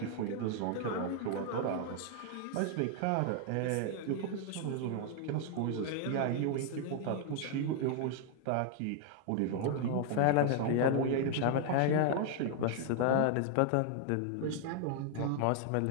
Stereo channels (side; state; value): both; different; correlation 0.00